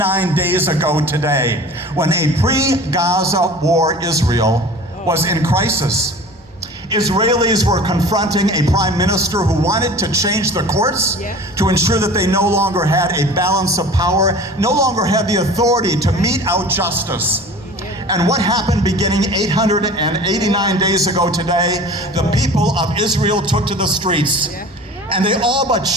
days ago today, when a pre-Gaza war Israel was in crisis. Israelis were confronting a prime minister who wanted to change the courts to ensure that they no longer had a balance of power, no longer had the authority to mete out justice. And what happened beginning 889 days ago today? The people of Israel took to the streets, and they all but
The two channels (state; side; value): normal; both; correlation 0.41